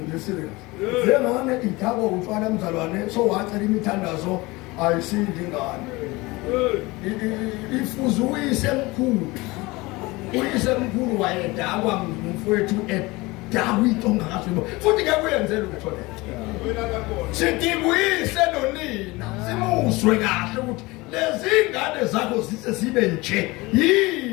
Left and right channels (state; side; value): quieter; right; 22.5 dB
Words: nje serious njengane ithabo utshwala mzalwane so wacela imithandazo ayisindi ingane ifuze uyise mkhulu wayedakwa ngumfowethu edakwa into ongakazwibo futhi ngeke uyenzele utho le sidibuyise nonina simuzwe kahle ukuthi lezi ingane zakho zise sibe nje